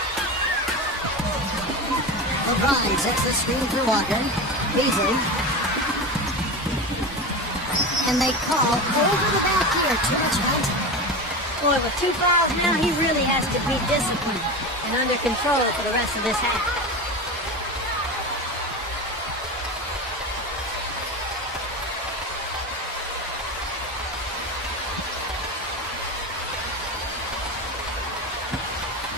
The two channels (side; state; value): both; normal; correlation 0.24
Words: LeBron sets the screen for Walker. Beasley. And they call over the back here. Too much height. Boy, with 2 fouls now, he really has to be disciplined and under control for the rest of this half.